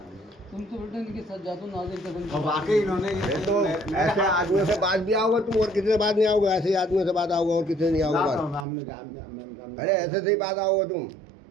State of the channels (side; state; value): left; drops out; at 8.7 s